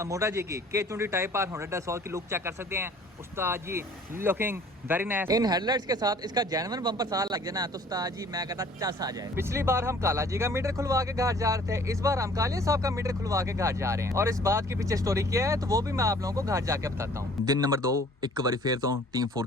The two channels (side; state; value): both; normal; correlation 0.53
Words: मोटा जी की K20 टाइप आर 100 की लुक चेक कर सकते हैं। उस्ताद जी लुकिंग वेरी नाइस। इन हेडलाइट्स के साथ इसका जेन्युइन बम्पर साल लग जाना तो उस्ताद जी मैं कहता चस आ जाए। पिछली बार हम काला जी का मीटर खुलवा के घर जा रहे थे, इस बार हम कालिया साहब का मीटर खुलवा के घर जा रहे हैं और इस बात के पीछे स्टोरी क्या है तो वो भी मैं आप लोगों को घर जाके बताता हूँ। दिन नंबर 2 एक बार फिर तो टीम 4